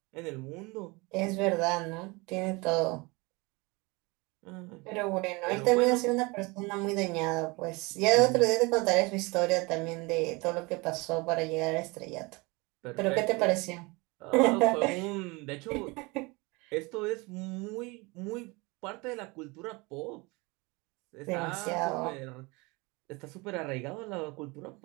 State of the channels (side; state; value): left; quieter; 25.7 dB